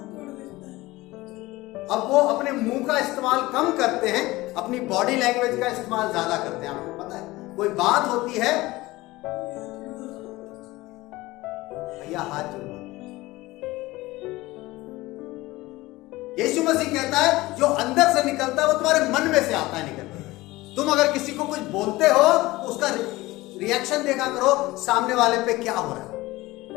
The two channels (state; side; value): quieter; right; 19.5 dB